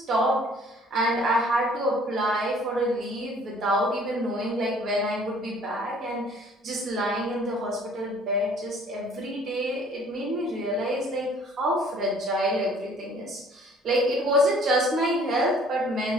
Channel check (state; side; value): normal; both; correlation 0.55